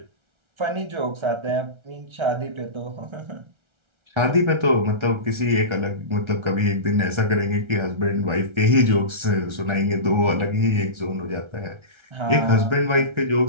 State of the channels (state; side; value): late; left; 1.3 ms